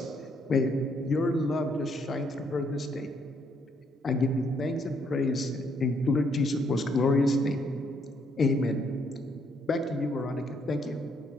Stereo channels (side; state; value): both; normal; correlation 0.71